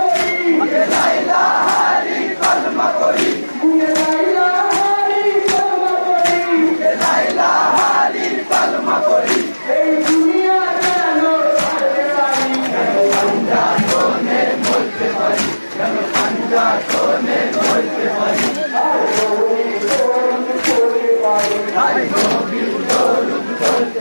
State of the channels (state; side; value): inverted; both; correlation -1.00